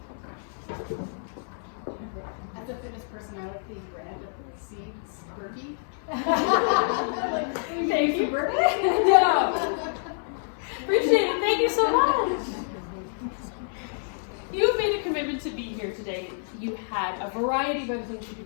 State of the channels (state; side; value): silent; right; 60 dB below the other